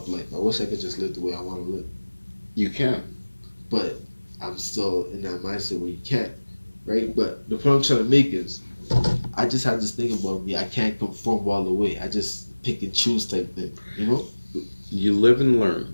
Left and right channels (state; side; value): inverted; both; correlation -1.00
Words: life. I wish I could just live the way I want to live. You can. But I'm still in that mindset where you can't, right? But the point I'm trying to make is, I just have this thing about me. I can't conform all the way. I just pick and choose type thing, you know? You live and learn,